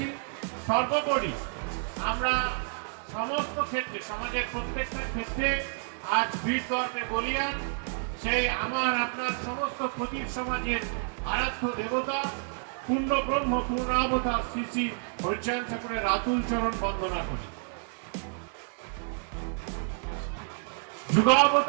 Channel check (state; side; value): silent; left; 58 dB below the other